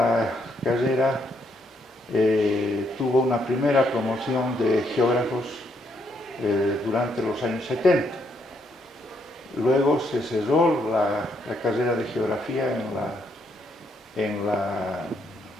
carrera tuvo una primera promoción de geógrafos durante los años 70. Luego se cerró la carrera de geografía en la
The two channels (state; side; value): normal; both; correlation 0.74